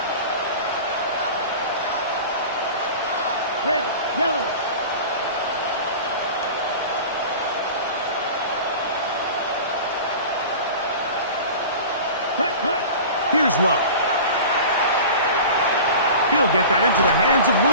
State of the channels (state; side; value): inverted; both; correlation -0.36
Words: Red, yellow. Cut. Here's Love. He'll get that into the hands of